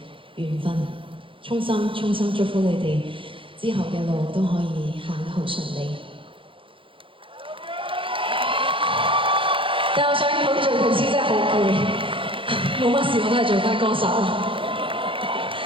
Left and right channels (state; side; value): late; left; 0.25 ms